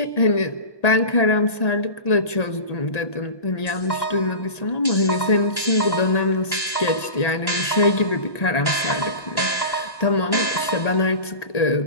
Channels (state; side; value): late; right; 1.8 ms